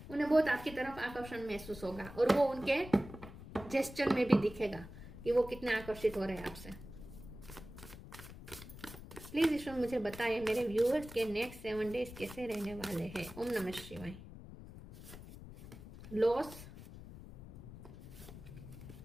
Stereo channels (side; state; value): left; noise; rumble, 14 dB below the sound